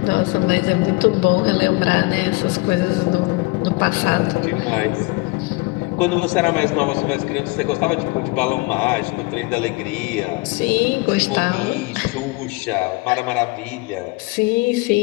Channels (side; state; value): right; quieter; 24.9 dB